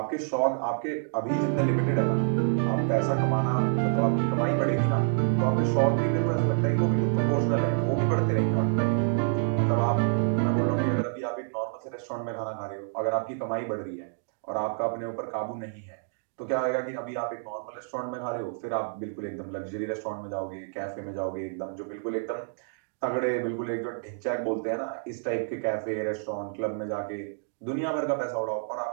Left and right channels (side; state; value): left; silent; digital silence